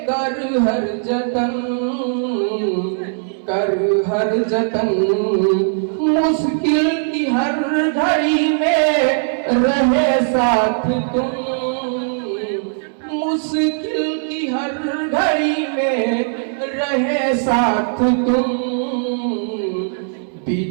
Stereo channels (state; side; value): silent; left; digital silence